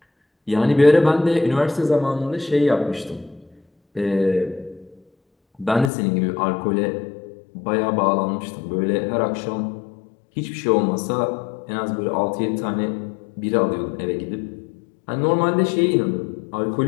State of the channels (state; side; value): drops out; right; at 5.9 s